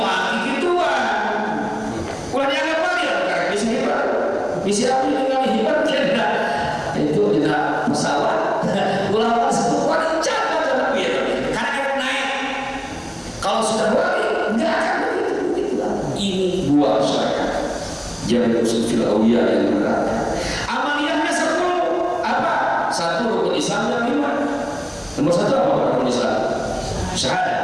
gituan. Ulah dianggap wali, karena bisa hebat. Bisa apa dengan hebat tidak? Itu tidak masalah. Ulama sebut wali jangan gitu. Karena dia naik. Kalau sudah wali, nggak akan begitu. Ini buah syariat. Jangan usul fil awliya yang benar. Amaliyahnya 10. Apa? 1 rukun Islam yang 5. Nomor 1 apa rukun Islam?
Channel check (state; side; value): identical; both; correlation 1.00